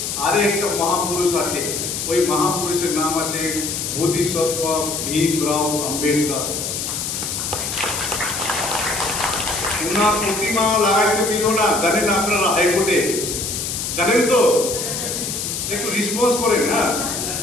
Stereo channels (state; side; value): noise; left; hiss, 3 dB below the sound